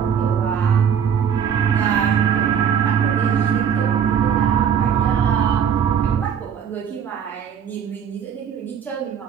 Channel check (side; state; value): left; quieter; 8.0 dB